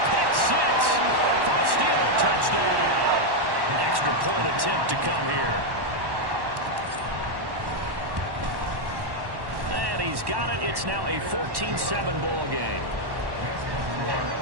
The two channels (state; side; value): late; left; 1.1 ms